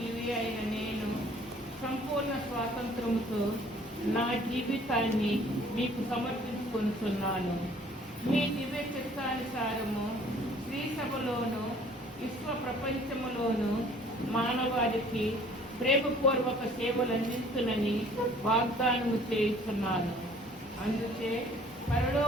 అయిన నేను సంపూర్ణ స్వాతంత్రముతో నా జీవితాన్ని మీకు సమర్పించుకుంటున్నాను. మీ దివ్య చిత్తానుసారము శ్రీ సభలోను విశ్వ ప్రపంచములోను మానవాళికి ప్రేమపూర్వక సేవలు అందిస్తునని వాగ్దానము చేస్తున్నాను. అందుకే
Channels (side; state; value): both; normal; correlation 0.55